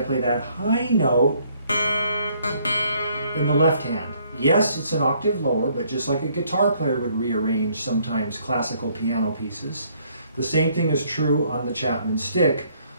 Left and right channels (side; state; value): both; inverted; correlation -0.66